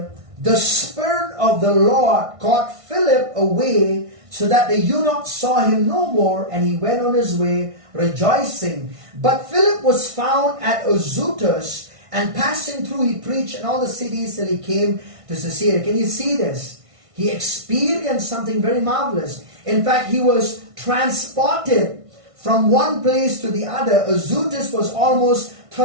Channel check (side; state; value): left; late; 1.5 ms